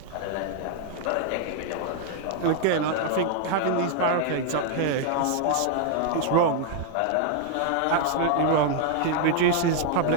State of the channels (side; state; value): both; different; correlation 0.00